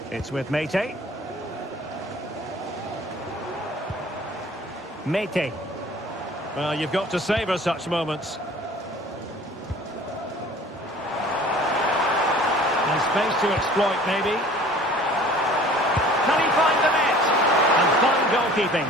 It's with Mete. Mete. Well, you've got to savour such moments. And space to exploit, maybe. Can he find the net? And fine goalkeeping.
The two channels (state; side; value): normal; both; correlation 0.48